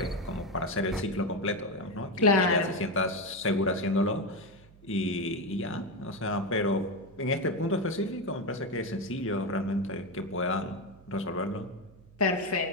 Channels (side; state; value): right; noise; hum, 24 dB below the sound